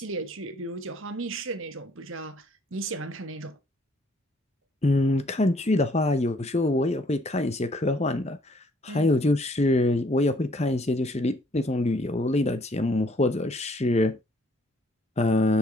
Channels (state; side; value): normal; both; correlation 0.63